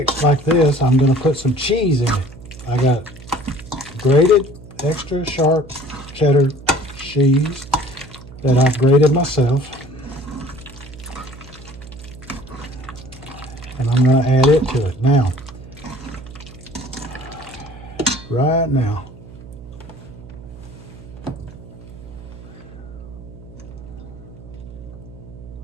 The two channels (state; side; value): noise; right; hum, 17 dB below the sound